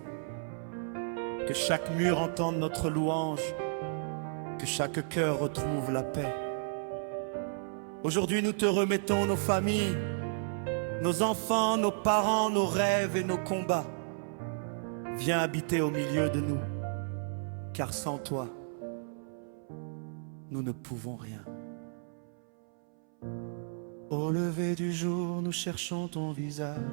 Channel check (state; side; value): silent; left; 56 dB below the other